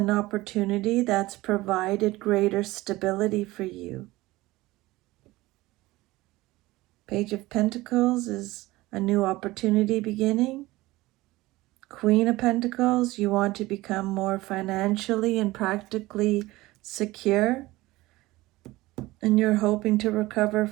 opportunity that's provided greater stability for you. Page of Pentacles is a new opportunity beginning. Queen of Pentacles, you want to become more financially and practically secure, and you're hoping to recover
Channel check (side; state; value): left; quieter; 19.1 dB